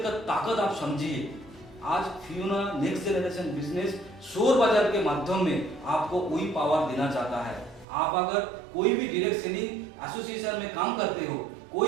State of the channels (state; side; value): drops out; left; at 7.9 s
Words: का ताकत आप समझिए। आज फियोना नेक्स्ट जनरेशन बिजनेस शोर बाजार के माध्यम में आपको वही पावर देना चाहता है। आप अगर कोई भी डायरेक्ट सेलिंग एसोसिएशन में काम करते हो,